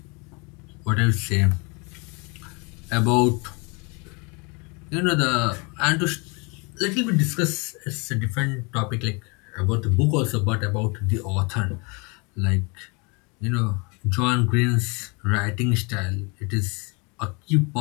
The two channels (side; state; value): right; quieter; 30.3 dB